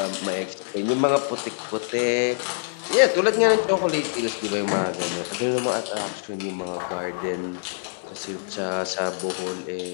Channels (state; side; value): silent; right; 62 dB below the other